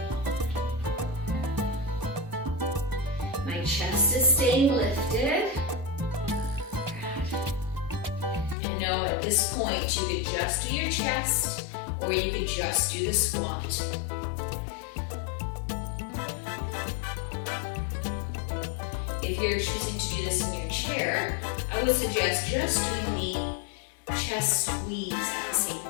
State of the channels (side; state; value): right; drops out; at 8.6 s